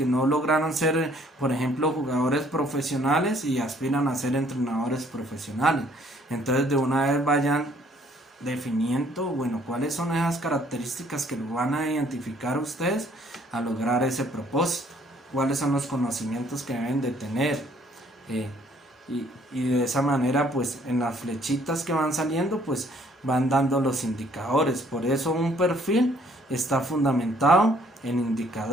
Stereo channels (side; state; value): both; normal; correlation 0.62